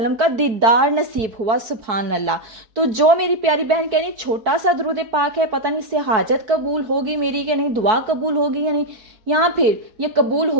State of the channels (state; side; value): late; left; 4.6 ms